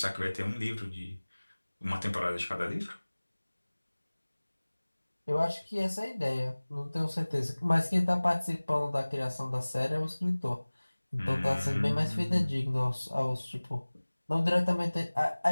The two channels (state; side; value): inverted; both; correlation -1.00